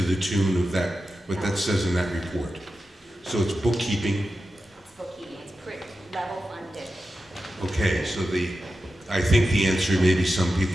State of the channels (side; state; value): both; normal; correlation 0.91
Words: tune of that, what that says in that report? So it's bookkeeping. Bookkeeping, it's pretty level funded. Okay, so I think the answer maybe some